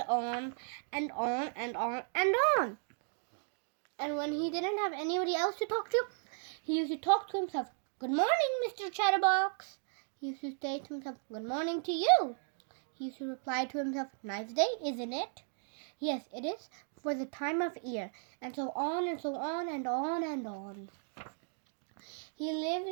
on and on and on and on. And when he didn't have anybody else to talk to, he used to talk to himself. "Good morning, Mr. Chatterbox." He used to say to himself, "Good morning to you." He used to reply to himself, "Nice day, isn't it?" "Yes, it is, for the time of year," and so on and so on and on and on. He lived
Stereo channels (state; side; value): silent; left; 54 dB below the other